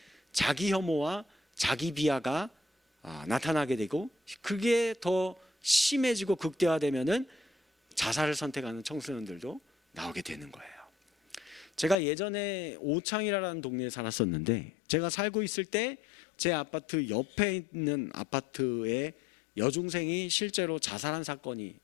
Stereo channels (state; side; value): drops out; right; at 12.0 s